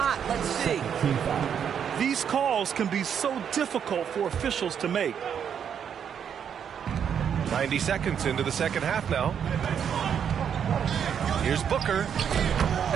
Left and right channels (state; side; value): quieter; left; 8.1 dB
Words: Let's see. These calls can be so difficult for officials to make. 90 seconds into the second half now. Here's Booker.